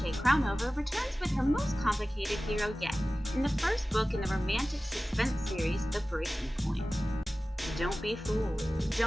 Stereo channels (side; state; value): both; normal; correlation 0.97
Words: returns with her most complicated hero yet in the first book in the romantic suspense series, The Breaking Point. Don't be fooled.